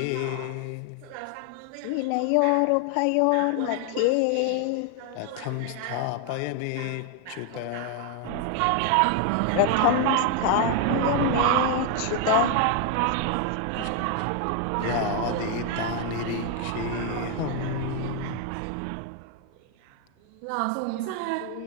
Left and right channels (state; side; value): different; both; correlation 0.01